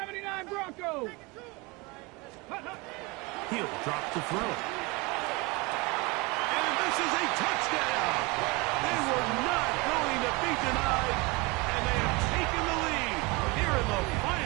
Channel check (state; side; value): quieter; left; 25.3 dB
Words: Bronco. He'll drop to throw. And this is a touchdown. They were not going to be denied, and they have taken the lead here in the